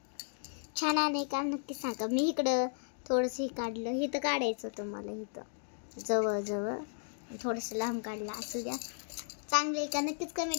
छान आहे का नक्की सांगा. मी इकडं थोडंसं काढलं, इथं काढायचं होतं मला, इथं जवळ थोडंसं लांब काढलं. असू द्या, चांगलं आहे का नक्कीच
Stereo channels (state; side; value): silent; right; digital silence